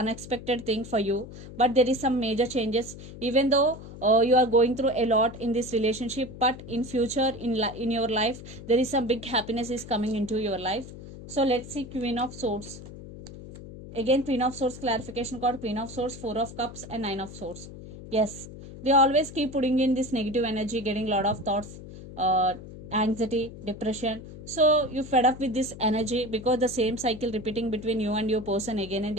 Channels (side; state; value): left; noise; hum, 14 dB below the sound